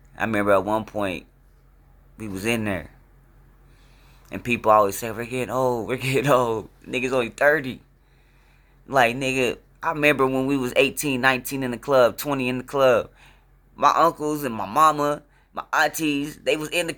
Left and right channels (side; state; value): both; identical; correlation 1.00